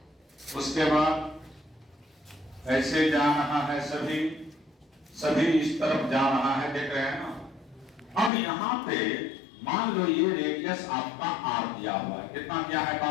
उसके बाद ऐसे जा रहा है सभी, सभी इस तरफ जा रहा है, देख रहे हैं ना। अब यहाँ पे मान लो ये रेडियस आपका आर दिया हुआ है, कितना दिया है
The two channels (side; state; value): right; drops out; at 8.3 s